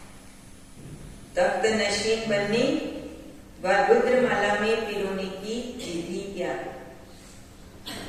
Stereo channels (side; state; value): both; identical; correlation 1.00